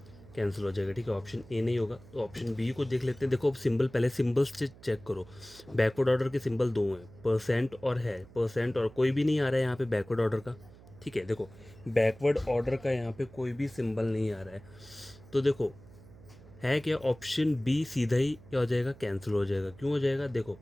कैंसिल हो जाएगा, ठीक है। ऑप्शन ए नहीं होगा, तो ऑप्शन बी को देख लेते हैं। देखो अब सिंबल, पहले सिंबल्स चेक करो। बैकवर्ड ऑर्डर के सिंबल दो हैं, परसेंट और है, परसेंट और कोई भी नहीं आ रहा है यहाँ पे बैकवर्ड ऑर्डर का, ठीक है। देखो बैकवर्ड ऑर्डर का यहाँ पे कोई भी सिंबल नहीं आ रहा है, तो देखो है क्या, ऑप्शन बी सीधा ही क्या हो जाएगा, कैंसिल हो जाएगा। क्यों हो जाएगा, देखो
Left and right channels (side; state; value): right; noise; hum, 21 dB below the sound